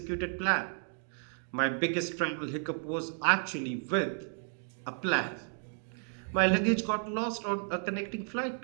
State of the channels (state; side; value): silent; left; 56 dB below the other